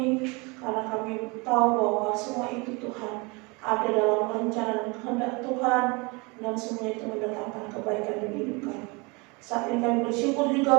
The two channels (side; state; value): left; quieter; 28.0 dB